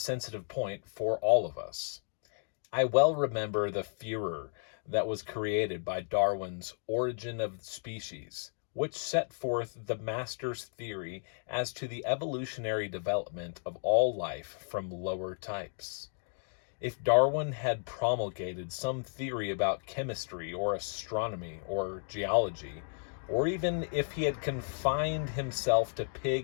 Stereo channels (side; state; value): right; silent; 55 dB below the other